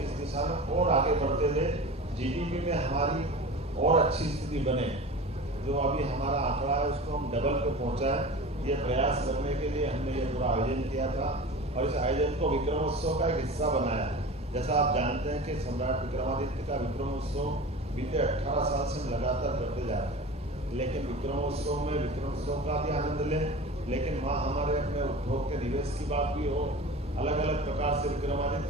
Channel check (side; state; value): both; normal; correlation 0.34